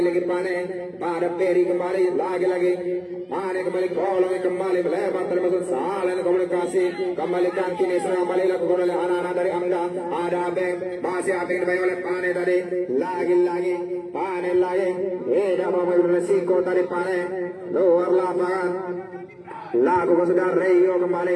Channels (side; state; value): both; identical; correlation 1.00